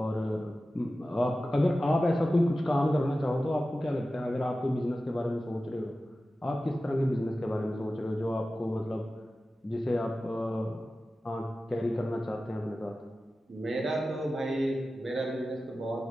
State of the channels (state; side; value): normal; both; correlation 0.95